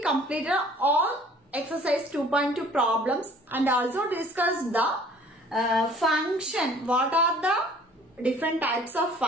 completed all exercise 2.2 problems and also discussed the function. What are the different types of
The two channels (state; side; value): normal; both; correlation 0.53